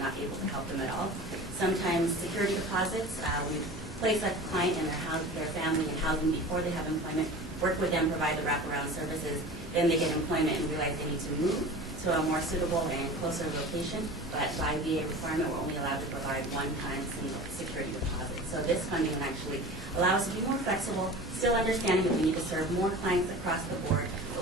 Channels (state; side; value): normal; both; correlation 0.36